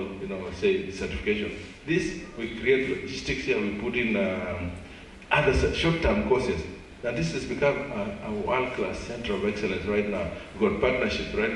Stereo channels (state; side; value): identical; both; correlation 1.00